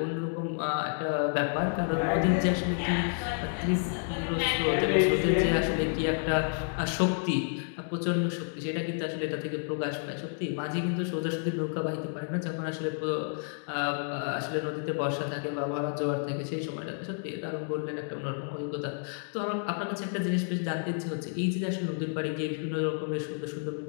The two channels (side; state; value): right; silent; 57 dB below the other